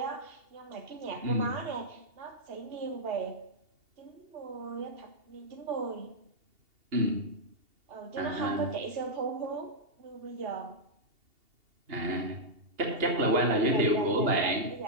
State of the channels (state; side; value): late; left; 2.8 ms